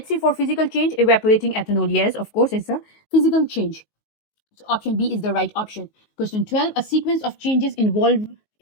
see for physical change. Evaporating ethanol, yes, of course it's a physical change. So option B is the right option. Question 12. A sequence of changes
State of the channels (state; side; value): late; right; 19 ms